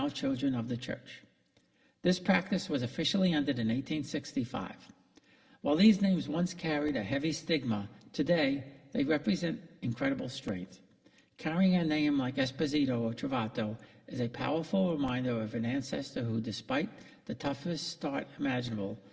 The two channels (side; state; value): both; identical; correlation 1.00